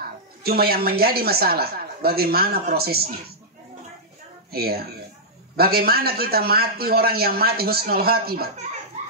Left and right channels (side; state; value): both; normal; correlation -0.10